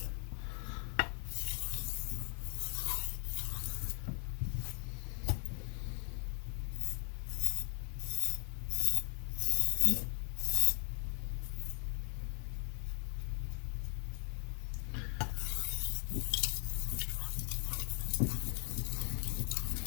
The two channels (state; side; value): quieter; right; 38.8 dB